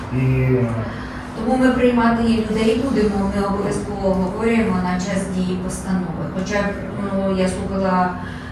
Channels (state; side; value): identical; both; correlation 1.00